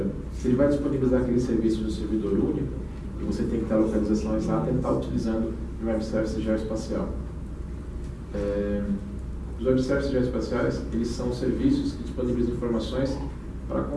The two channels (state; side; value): identical; both; correlation 1.00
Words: Se ele vai disponibilizar aquele serviço no servidor único, e você tem que ter a localização exata, ele está utilizando o Web Service geoespacial. Os Web Services geoespaciais, eles são serviços que disponibilizam informações para